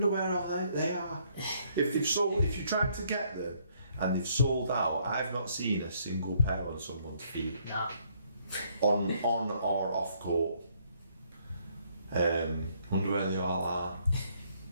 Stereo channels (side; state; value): both; inverted; correlation -0.68